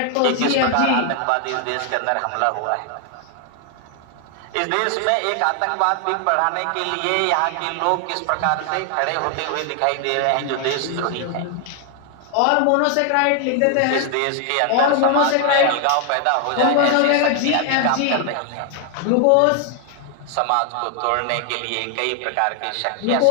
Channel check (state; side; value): different; both; correlation 0.00